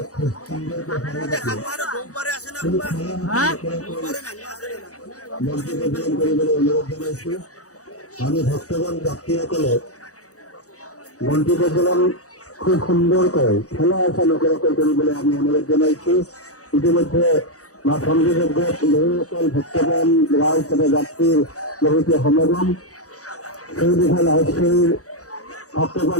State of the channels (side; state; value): right; late; 0.66 ms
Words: আমি ভক্তগণ যাত্রীসকলে মন্ত্রী প্রচলন খুব সুন্দর করে খেলা আসা লোকেরা কৰিবলৈ আমি অনুরোধ জানাইছি ইতিমধ্যে মা সংযোজক বহুসকল ভক্তগণ রাইজ তথা যাত্রীর বহুতে সমাগম সেই বিষয়ে লাইভশ্ৰীৰ